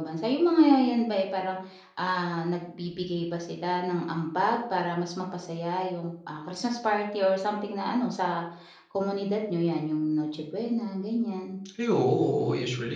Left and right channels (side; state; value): both; identical; correlation 1.00